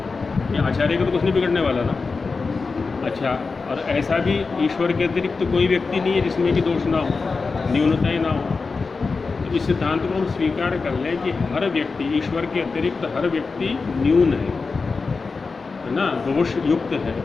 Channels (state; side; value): quieter; right; 4.4 dB